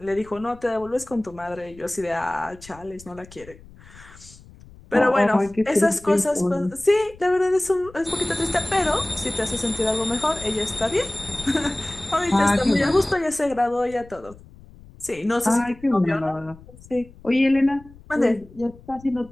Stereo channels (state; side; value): noise; left; rumble, 21 dB below the sound